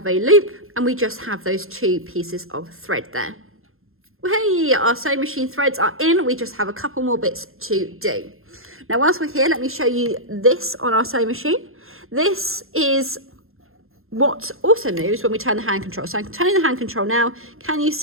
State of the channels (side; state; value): left; late; 0.61 ms